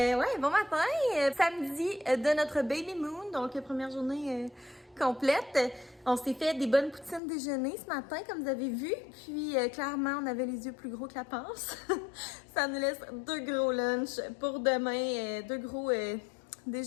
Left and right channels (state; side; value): drops out; right; at 7.2 s